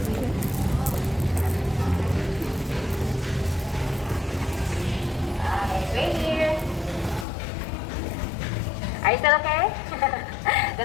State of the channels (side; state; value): right; drops out; at 7.2 s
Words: Right here. Are you still okay?